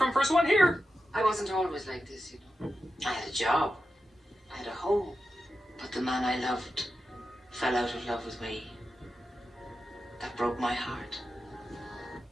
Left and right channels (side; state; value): both; normal; correlation 0.90